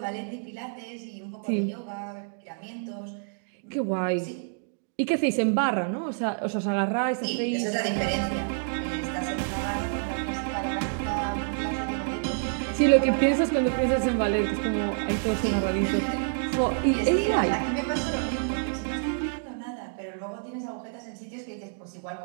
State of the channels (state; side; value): silent; left; digital silence